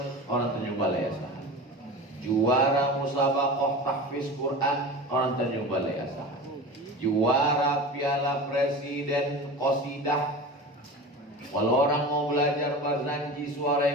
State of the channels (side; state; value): both; normal; correlation 0.32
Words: orang Tanjung Balai Asahan, juara musabaqah tahfiz Quran orang Tanjung Balai Asahan, juara Piala Presiden Qasidah. Kalau orang mau belajar barzanji suara